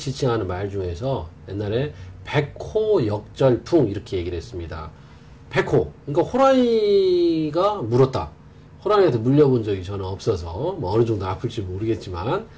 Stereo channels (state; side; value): identical; both; correlation 1.00